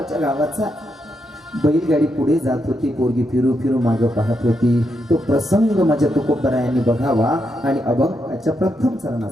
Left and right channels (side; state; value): both; normal; correlation 0.82